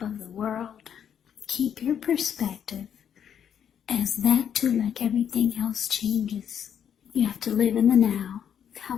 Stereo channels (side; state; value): right; quieter; 8.7 dB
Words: of the world, keep your perspective, as that too, like everything else, changes. You have to live in the now,